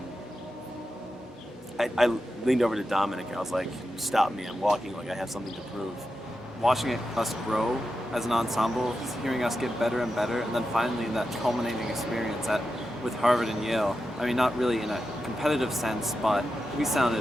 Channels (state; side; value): normal; both; correlation 0.89